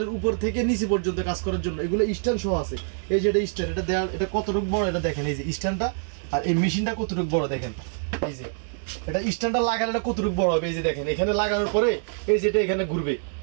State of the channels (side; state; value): left; silent; 61 dB below the other